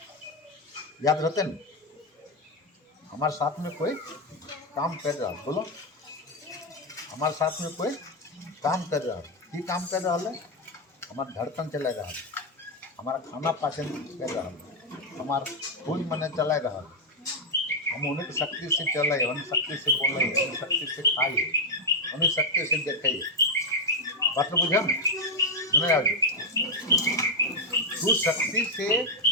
याद रहते न, हमारे साथ में कोई काम कर रहा है, बोलो हमारे साथ में कोई काम कर रहा है। की काम कर रहा है? हमारा धड़कन चला रहा है, हमारा खाना पाचन कर रहा है, हमारा खून मन चला रहा है, हम उन्हीं की शक्ति से चल रहे, उन्हीं शक्ति से बोल रहे, उन्हीं शक्ति से खाइए, उन्हीं शक्ति से देखिए। बात तो बुझे नहीं आज उस शक्ति से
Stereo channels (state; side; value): normal; both; correlation 0.02